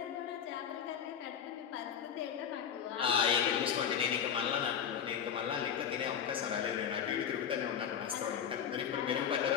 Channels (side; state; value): right; quieter; 8.2 dB